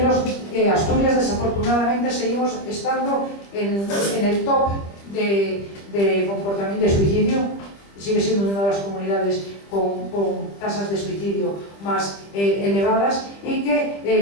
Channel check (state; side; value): late; right; 25 ms